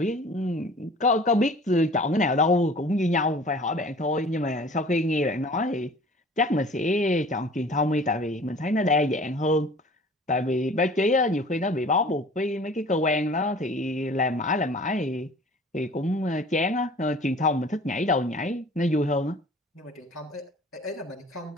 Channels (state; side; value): normal; both; correlation 0.46